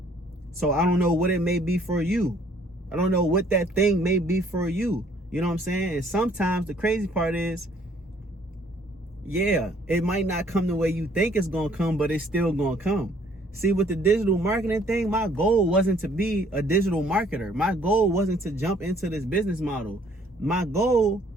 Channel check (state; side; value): normal; both; correlation 0.61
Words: So I don't know what it may be for you. I don't know what that thing may be for you. You know what I'm saying? And sometimes the crazy part is, yeah, it might not come the way you think it's going to come, but it's still going to come. See, with the digital marketing thing, my goal wasn't to be a digital marketer. My goal wasn't to jump into this business model. My goal,